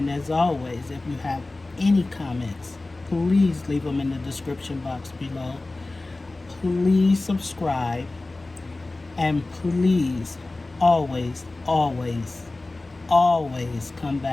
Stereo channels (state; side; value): quieter; right; 3.1 dB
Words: as always, if you have any comments, please leave them in the description box below. Please subscribe, and please always come